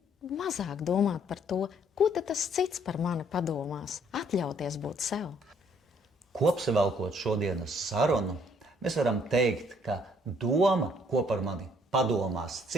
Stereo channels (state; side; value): normal; both; correlation 0.64